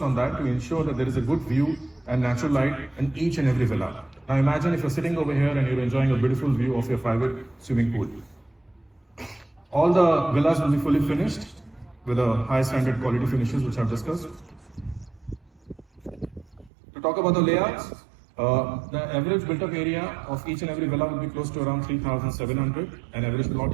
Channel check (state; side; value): drops out; left; at 16.7 s